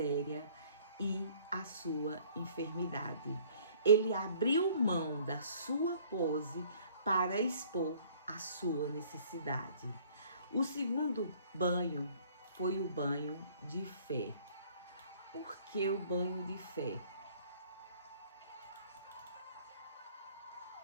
e a sua enfermidade. Ele abriu mão da sua pose para expor a sua necessidade. O segundo banho foi o banho de fé. Por que o banho de fé?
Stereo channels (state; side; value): inverted; both; correlation -0.56